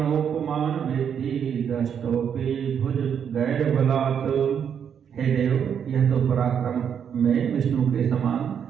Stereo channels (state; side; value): quieter; left; 7.9 dB